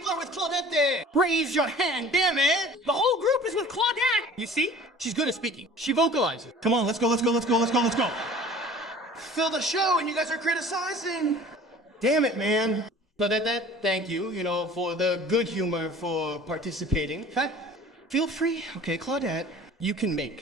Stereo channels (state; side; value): normal; both; correlation 0.46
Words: are with Claudette? Raise your hand, damn it! The whole group is with Claudette! You see? She's good at speaking. She vocalizes. Come on, let's go, let's go, let's go, let's go, let's go. Fill the show and you guys are criticizing. Damn it, man. Claudette, thank you, for the good humor for participating. Feel free. Okay, Claudette, you can